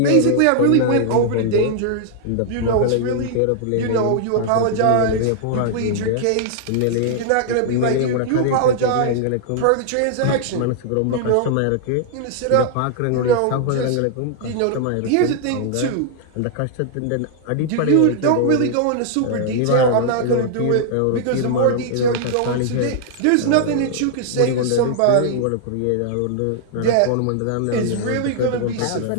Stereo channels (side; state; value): both; different; correlation -0.01